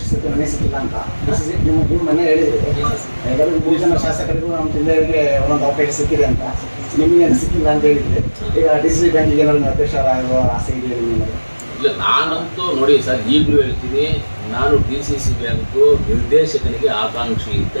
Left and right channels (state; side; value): inverted; both; correlation -1.00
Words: ಸಿಕ್ಕಿಲ್ಲ, ಮನೆ ಸಿಕ್ಕಿಲ್ಲ ಅಂತ ನಿಮ್ಮ ಮನೆ ಹೇಳಿದ್ರು. ಎಲ್ಲರಿಗೂ 3 ಜನ ಶಾಸಕರಿಗೂ ನಮ್ಮ ಜಿಲ್ಲೆಯವರಿಗೆ ಒಂದೊಂದು ಅವಕಾಶ ಸಿಕ್ಕಿದೆ ಅಂತ, ನಿಮಗೆ ಸಿಕ್ಕಿಲ್ಲ ಅಂತ ಹೇಳಿದ್ರೆ ಈಗ DCC ಬ್ಯಾಂಕಿಗೆ ಏನಾದ್ರು ಅಧ್ಯಕ್ಷ ಆಗುವ ಆಸೆ ಇದೆ ನಿಮಗೆ? ಇಲ್ಲ, ನಾನಂತೂ ನೋಡಿ ಸರ್, ಈಗಲೂ ಹೇಳ್ತೀನಿ, ನಾನು DCC ಬ್ಯಾಂಕು ನಿರ್ದೇಶಕನಿಗೆ ಆಕಾಂಕ್ಷಿ ಅಂತ